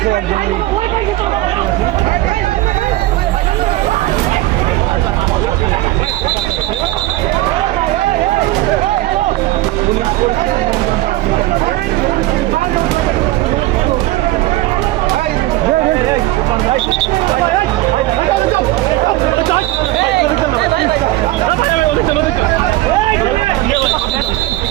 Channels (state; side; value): quieter; left; 17.2 dB